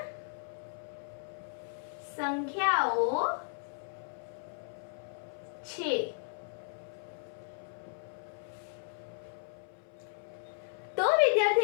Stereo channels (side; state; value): right; silent; 54 dB below the other